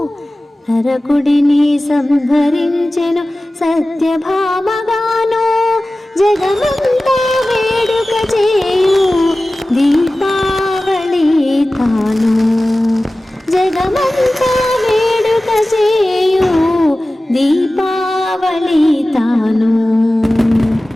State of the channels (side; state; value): both; normal; correlation 0.96